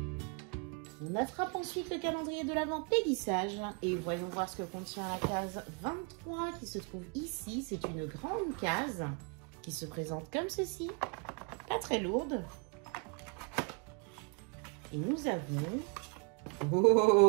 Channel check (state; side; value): quieter; left; 34.6 dB